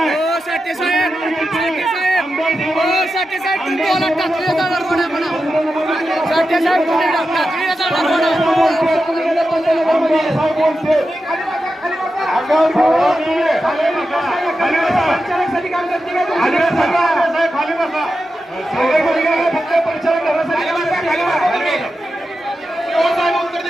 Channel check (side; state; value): both; normal; correlation 0.90